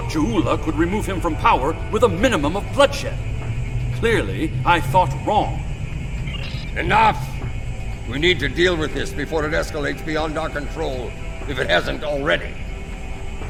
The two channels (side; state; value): both; identical; correlation 1.00